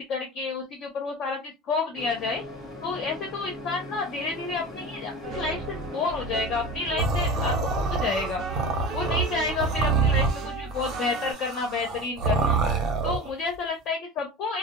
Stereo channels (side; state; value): both; normal; correlation 0.32